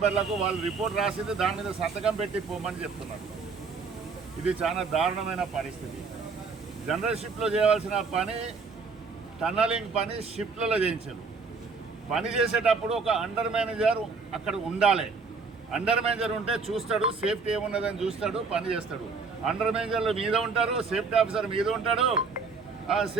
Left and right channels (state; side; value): quieter; left; 4.7 dB